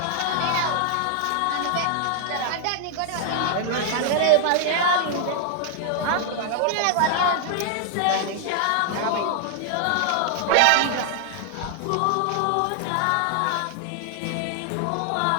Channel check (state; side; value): different; both; correlation 0.00